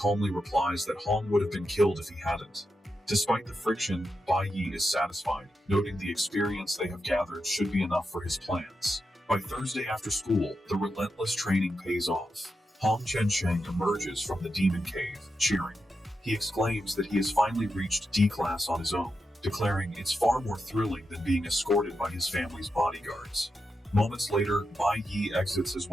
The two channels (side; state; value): both; normal; correlation 0.87